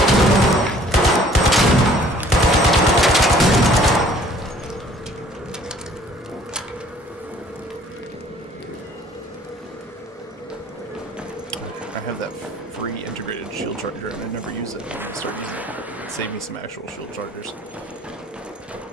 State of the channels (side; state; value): both; normal; correlation 0.55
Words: I have that free integrated shield charger and I never use it. I start using it. It'd save me some actual shield chargers.